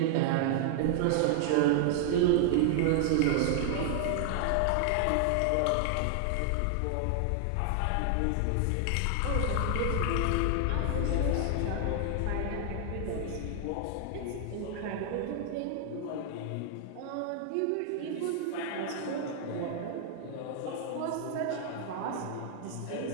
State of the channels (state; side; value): different; both; correlation 0.00